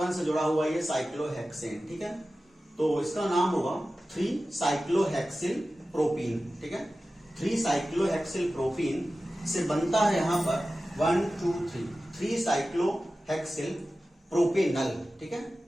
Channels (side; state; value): both; normal; correlation 0.95